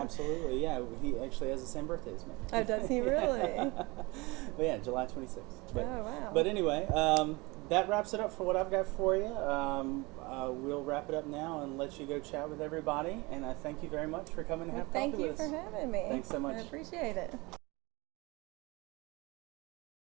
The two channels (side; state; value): left; quieter; 24.6 dB